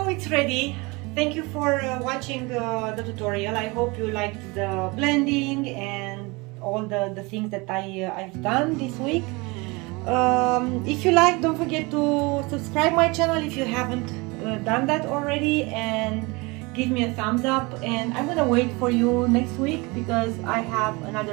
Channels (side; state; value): left; quieter; 25.8 dB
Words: it's ready. Thank you for watching the tutorial. I hope you liked the blending and all the things that I've done this week. If you like, don't forget to subscribe my channel if you haven't done that already, and give me a thumbs up, and I'm gonna wait for you next week because I have